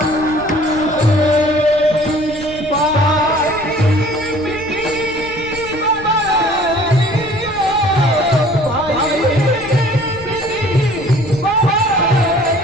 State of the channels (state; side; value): noise; left; rumble, 17 dB below the sound